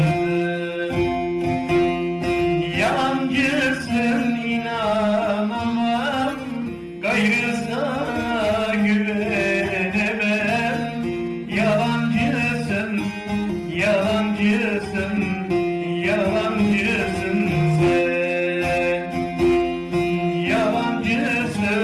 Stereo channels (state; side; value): identical; both; correlation 1.00